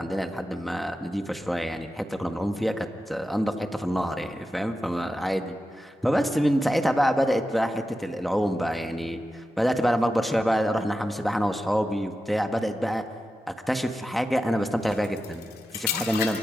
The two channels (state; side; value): normal; both; correlation 0.90